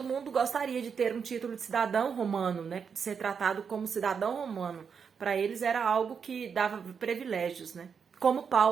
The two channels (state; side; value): quieter; left; 6.4 dB